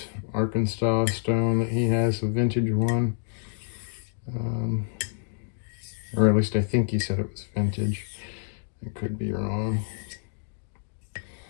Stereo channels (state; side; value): silent; right; digital silence